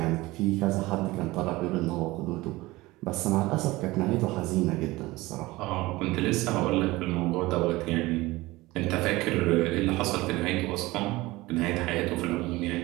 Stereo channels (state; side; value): quieter; left; 20.0 dB